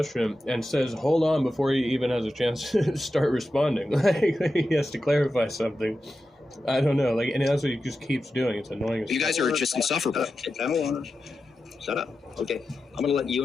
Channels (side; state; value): both; normal; correlation 0.91